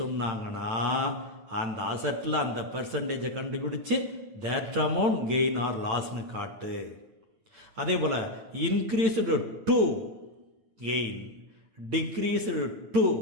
சொன்னாங்கன்னா அந்த அசட்டில் அந்த பெர்சன்டேஜை கண்டுபிடிச்சு தட் அமௌண்ட் கெயின் ஆர் லாஸ்னு காட்டு. அதே போல் increased to gain, decreased to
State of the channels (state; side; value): late; left; 8.9 ms